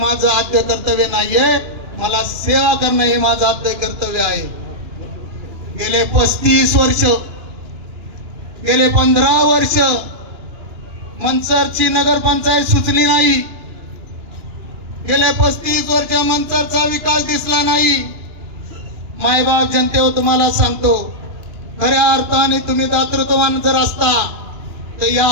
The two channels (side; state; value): left; late; 2.9 ms